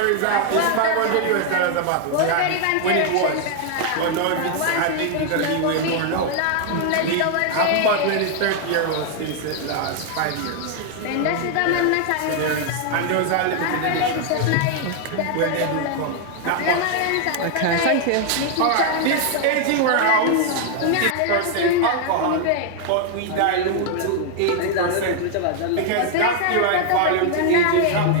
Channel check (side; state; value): both; different; correlation 0.00